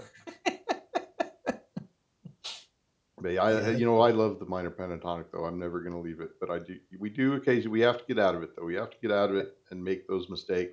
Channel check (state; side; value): identical; both; correlation 1.00